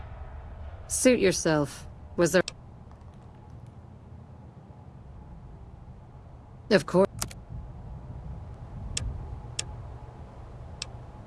Suit yourself. Was there... Of course.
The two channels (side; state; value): both; identical; correlation 1.00